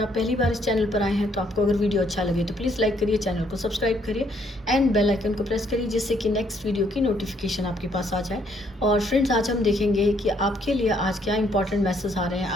आप पहली बार इस चैनल पर आए हैं तो आपको अगर वीडियो अच्छा लगे तो प्लीज़ लाइक करिए, चैनल को सब्सक्राइब करिए एंड बेल आइकन को प्रेस करिए, जिससे कि नेक्स्ट वीडियो की नोटिफिकेशन आपके पास आ जाए। और फ्रेंड्स, आज हम देखेंगे कि आपके लिए आज क्या इंपॉर्टेंट मैसेज आ रहे हैं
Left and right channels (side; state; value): both; normal; correlation 0.69